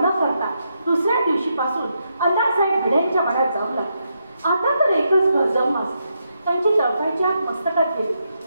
करता दुसऱ्या दिवशीपासून अण्णासाहेब भिडेंच्या वाड्यात जाऊ लागले. आता तर एकच घर जाऊन त्यांची चळकायची आत मस्तकात गेली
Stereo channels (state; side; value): inverted; both; correlation -0.82